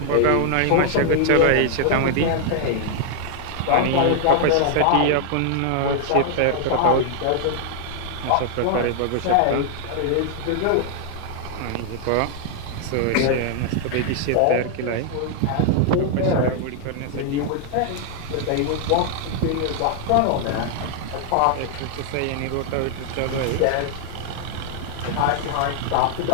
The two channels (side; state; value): both; different; correlation 0.00